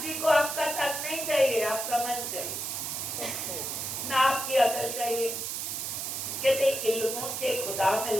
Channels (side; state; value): right; noise; hiss, 3 dB below the sound